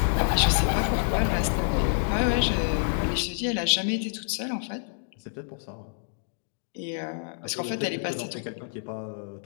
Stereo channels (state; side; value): silent; right; digital silence